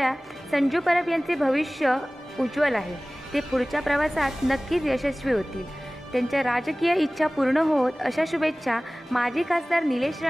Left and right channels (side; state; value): both; normal; correlation 0.98